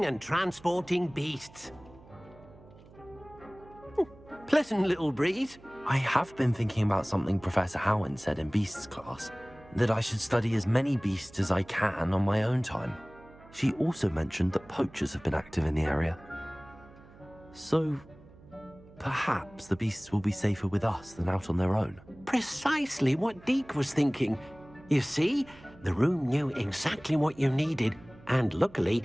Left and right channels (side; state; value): right; noise; hum, 23 dB below the sound